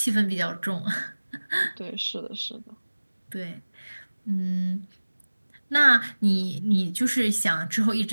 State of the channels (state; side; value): inverted; both; correlation -1.00